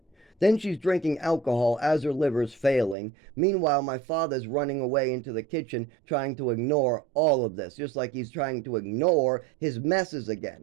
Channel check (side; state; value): left; drops out; at 3.0 s